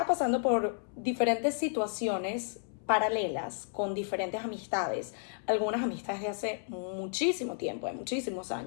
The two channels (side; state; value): right; silent; 56 dB below the other